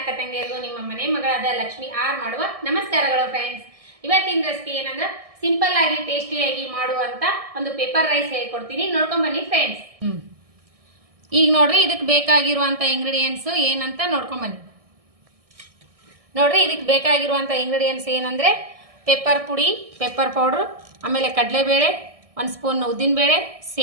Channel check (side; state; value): left; late; 1.6 ms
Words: ತಂಗಿಯರಿಗೂ ನಿಮ್ಮ ಮನೆ ಮಗಳಾದ ಲಕ್ಷ್ಮಿ ಆರ್ ಮಾಡುವ ನಮಸ್ಕಾರಗಳು ಫ್ರೆಂಡ್ಸ್. ಇವತ್ತಿನ ರೆಸಿಪಿ ಏನಂದ್ರೆ ಸಿಂಪಲ್ ಆಗಿ ಟೇಸ್ಟಿಯಾಗಿ ಮಾಡುವಂತ ಒಂದು ಪೇಪರ್ ರೈಸ್ ಹೇಳ್ಕೊಡ್ತೀನಿ, ನೋಡ್ಕೊಂಡ್ ಬನ್ನಿ ಫ್ರೆಂಡ್ಸ್. ಈಗ ನೋಡ್ರಿ ಇದಕ್ಕೆ ಬೇಕಾಗಿರುವಂತ ಇಂಗ್ರೀಡಿಯೆಂಟ್ಸ್ ಏನಂತ ನೋಡ್ಕೊಂಡ್ ಬನ್ನಿ. ನೋಡ್ರಿ ಇದಕ್ಕೆ ಬೇಕಾಗಿರುವಂತ ಇಂಗ್ರೀಡಿಯೆಂಟ್ಸ್ ಏನಂದ್ರೆ ಪೆಪ್ಪರ್ ಪುಡಿ, ಪೆಪ್ಪರ್ ಪೌಡರ್, ಆಮೇಲೆ ಕಡಲೆಬೇಳೆ, 1 ಸ್ಪೂನ್ ಉದ್ದಿನಬೇಳೆ,